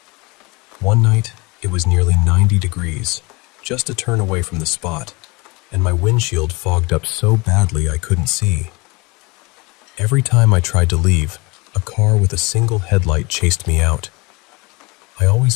One night, it was nearly 90 degrees, just a turn away from the spot, and my windshield fogged up so badly I couldn't see. Every time I tried to leave, a car with a single headlight chased me out. I always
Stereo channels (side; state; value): right; quieter; 25.9 dB